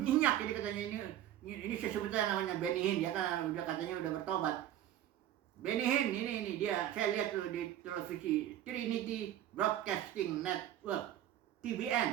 ini katanya ini sebetulnya namanya Benny Hinn, dia kan udah katanya udah bertobat. Benny Hinn ini dia, saya lihat tuh di televisi Trinity Broadcasting Network,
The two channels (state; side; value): quieter; left; 12.0 dB